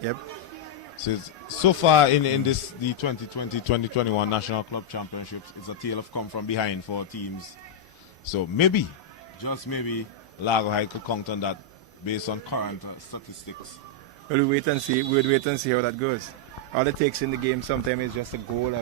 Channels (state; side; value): normal; both; correlation -0.03